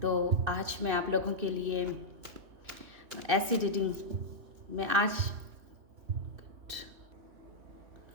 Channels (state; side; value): late; left; 2.6 ms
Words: आज मैं आप लोगों के लिए ऐसी रीडिंग में आज